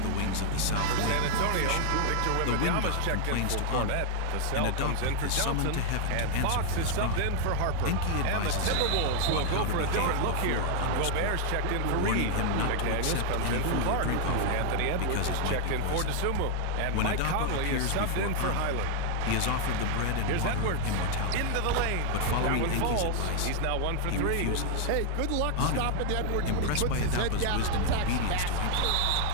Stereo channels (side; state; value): both; different; correlation 0.00